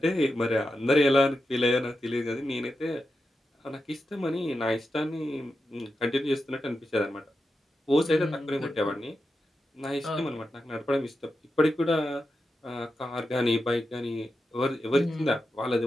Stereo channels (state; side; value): normal; both; correlation 0.89